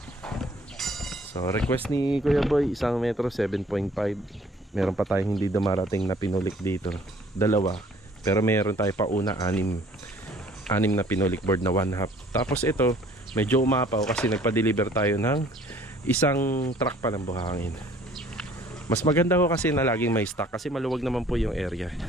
So request ni Kuya Boy, 1 metro, 7.5. Meron pa tayong hindi dumarating na pinulik dito. 2. Pero meron tayo pa una 6 na pinulik board na 1/2. Tapos ito, medyo umapaw kasi nagpa-deliver tayo ng isang truck pa ng buhangin. Mas maganda ko kasi na laging may stock kasi maluwag naman po yung area.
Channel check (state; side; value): normal; both; correlation 0.56